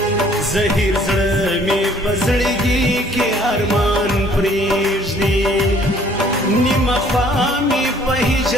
زهیر زړه می په زړګي کې ارمان پریږدي نیم خوا می په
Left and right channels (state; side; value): normal; both; correlation 0.58